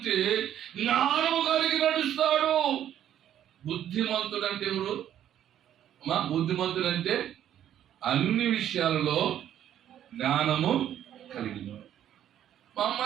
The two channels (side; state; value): left; quieter; 10.8 dB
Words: జ్ఞానము కలిగి నడుస్తాడు. బుద్ధిమంతుడు అంటే ఎవరు? బుద్ధిమంతుడు అంటే అన్ని విషయాలలో జ్ఞానము కలిగిన. మా